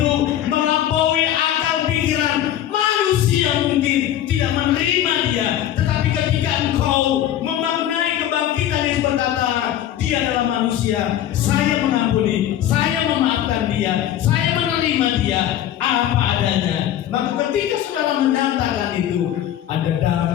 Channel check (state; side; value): quieter; right; 11.6 dB